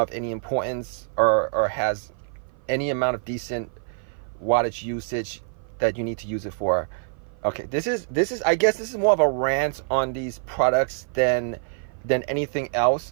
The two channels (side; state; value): left; silent; 55 dB below the other